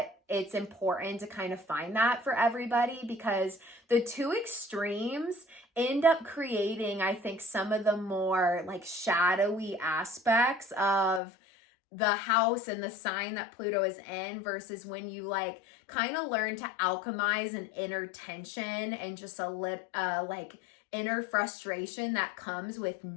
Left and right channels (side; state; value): right; drops out; at 11.2 s